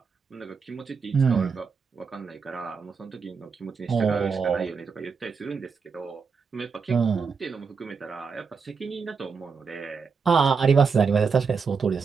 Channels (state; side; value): quieter; left; 5.4 dB